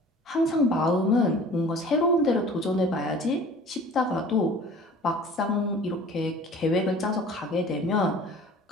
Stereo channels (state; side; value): normal; both; correlation 0.45